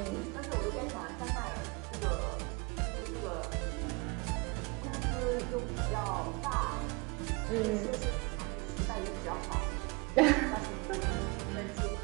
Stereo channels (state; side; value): quieter; left; 27.9 dB